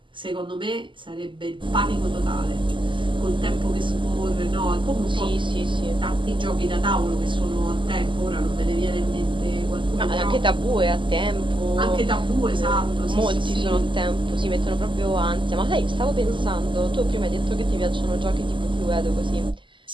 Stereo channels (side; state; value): left; late; 0.24 ms